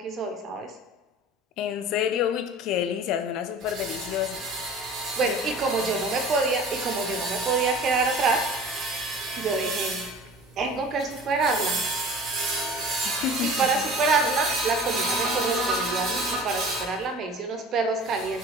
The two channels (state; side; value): normal; both; correlation 0.42